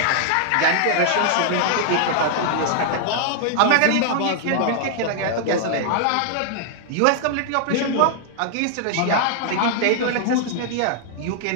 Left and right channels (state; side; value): different; both; correlation -0.01